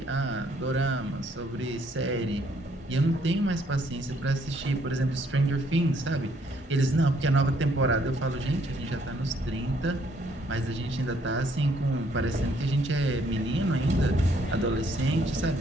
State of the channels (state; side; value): normal; both; correlation 0.67